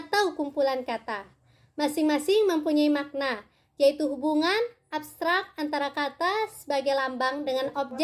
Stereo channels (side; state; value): both; identical; correlation 1.00